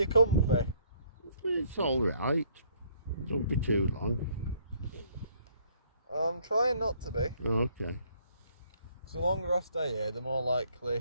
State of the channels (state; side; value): inverted; both; correlation -0.63